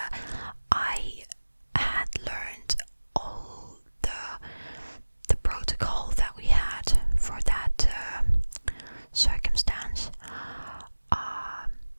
I had learned all the protocol that we had for that circumstance.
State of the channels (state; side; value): inverted; both; correlation -1.00